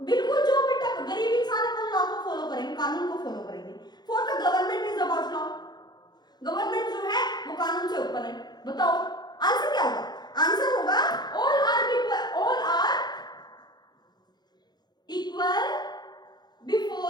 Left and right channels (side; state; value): right; late; 0.20 ms